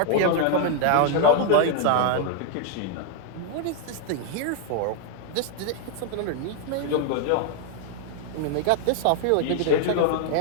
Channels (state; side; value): different; both; correlation 0.00